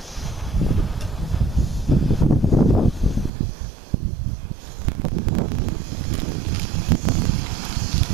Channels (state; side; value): drops out; left; at 3.3 s